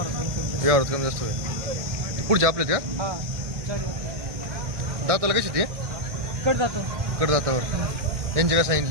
कमी जास्त होईल. पुढचे आपलेत का हा दाताला कशी ते कट जातो कडदातावर यांचे काय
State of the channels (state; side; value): late; left; 1.6 ms